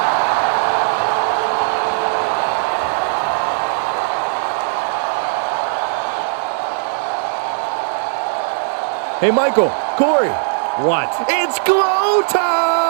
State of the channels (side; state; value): left; silent; digital silence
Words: Hey, Michael, Corey. What? It's glow